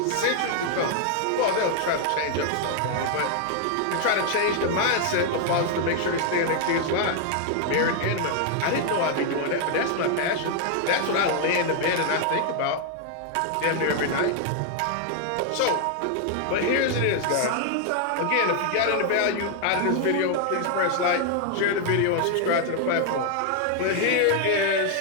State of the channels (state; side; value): different; both; correlation 0.00